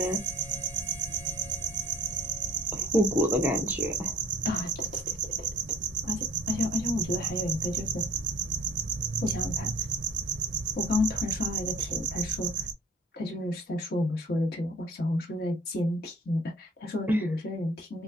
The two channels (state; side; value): normal; both; correlation 0.52